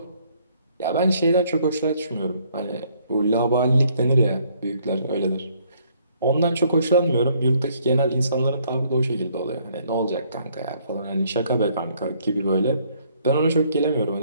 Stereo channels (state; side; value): inverted; both; correlation -0.65